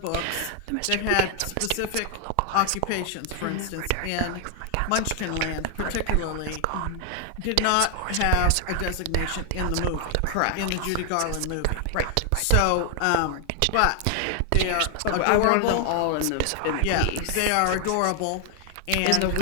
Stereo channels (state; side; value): different; both; correlation 0.00